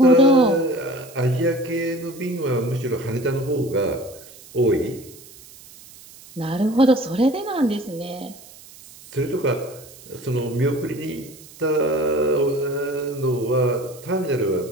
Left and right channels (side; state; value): right; noise; hiss, 20 dB below the sound